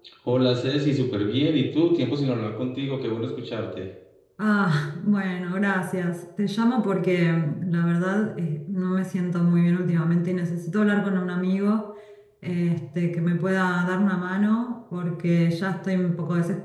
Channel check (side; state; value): both; identical; correlation 1.00